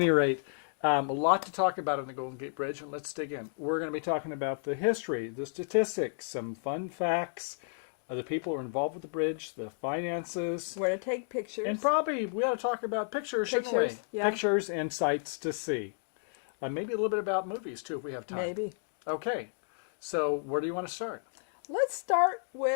rate, a lot to talk about on the Golden Gate Bridge, and let's dig in. We're going to be talking about the history, the statistics, some fun facts, the people who are involved with the bridge, the finances. Where to take pictures. And probably we ought to talk about pictures, shouldn't we? Yeah. Pictures and sights to see. Maybe a little bit about movies, too, if we have time. Maybe. Okay. So where do you want to start? Let's start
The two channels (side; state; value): right; silent; digital silence